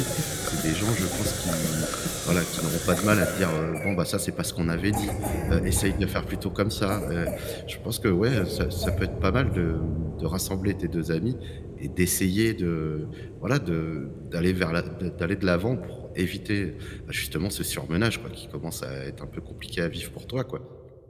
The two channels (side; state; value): both; identical; correlation 1.00